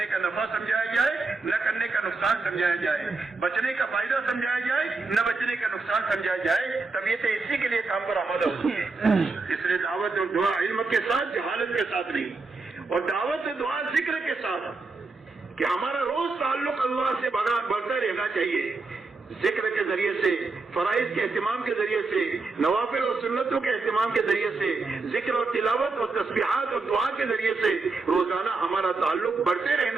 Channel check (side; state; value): left; quieter; 3.9 dB